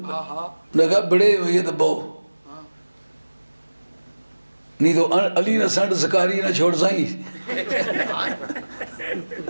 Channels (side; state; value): both; inverted; correlation -1.00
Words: ہاں ہاں نے کہا بڑے یہ دباؤ نہیں تو علی نہ سنڈ سکاری نہ چھوڑ سائیں،